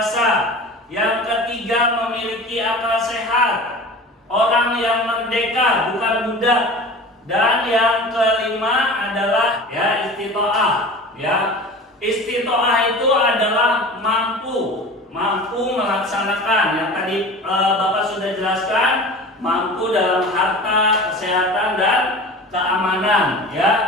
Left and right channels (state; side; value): normal; both; correlation 0.37